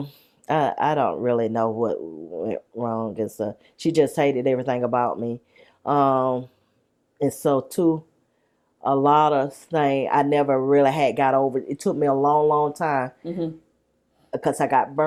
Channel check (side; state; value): both; identical; correlation 1.00